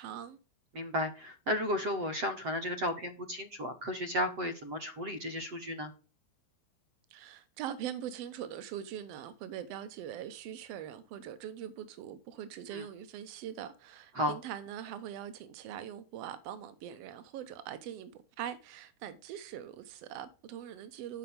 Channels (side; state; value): left; late; 7.8 ms